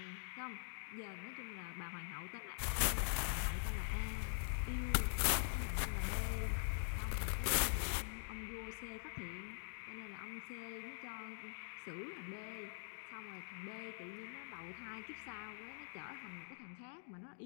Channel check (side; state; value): right; silent; digital silence